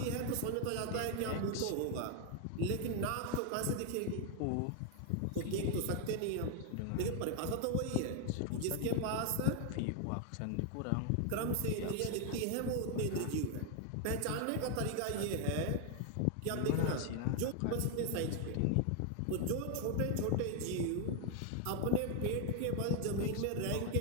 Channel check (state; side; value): different; both; correlation 0.00